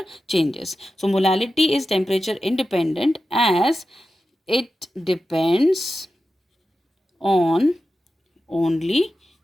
changes. So molality is temperature independent, as it depends on only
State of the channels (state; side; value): normal; both; correlation 0.92